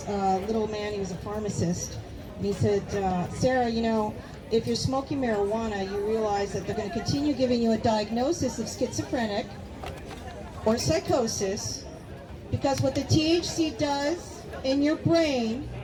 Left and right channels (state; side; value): identical; both; correlation 1.00